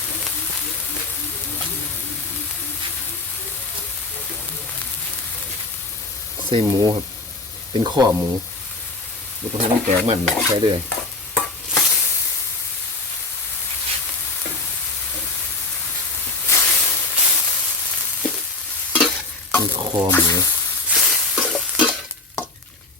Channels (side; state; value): right; quieter; 3.3 dB